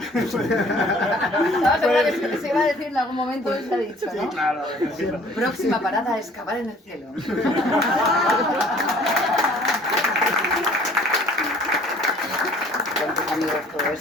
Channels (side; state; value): both; normal; correlation 0.54